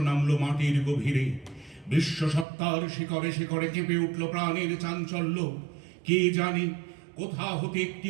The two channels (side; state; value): left; drops out; at 2.5 s